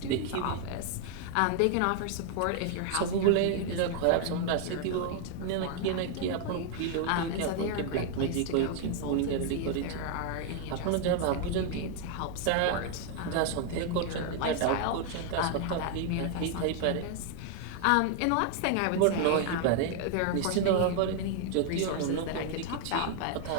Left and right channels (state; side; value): different; both; correlation 0.00